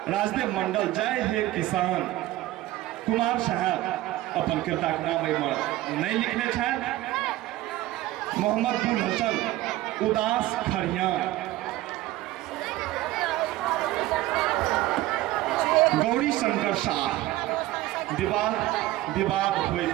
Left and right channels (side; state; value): left; quieter; 16.4 dB